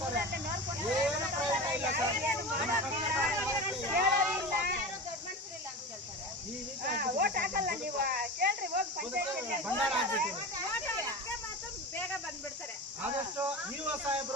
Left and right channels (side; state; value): both; normal; correlation 0.28